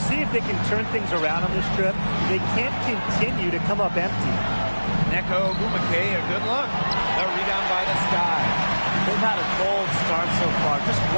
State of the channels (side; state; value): both; inverted; correlation -1.00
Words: if they can turn things around on this trip. They can't continue to come up empty. Neko Agumake, a good look. The rebound by the Sky. They've had a cold start so far. Just